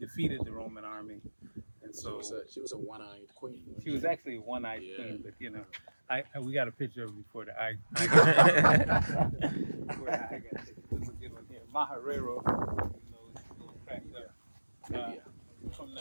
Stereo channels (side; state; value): both; inverted; correlation -1.00